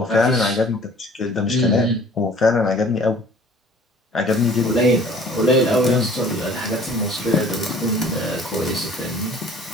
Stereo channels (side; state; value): both; normal; correlation 0.50